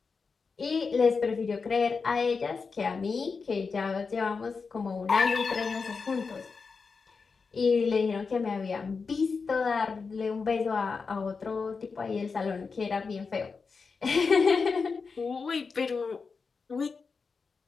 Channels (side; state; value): right; quieter; 4.9 dB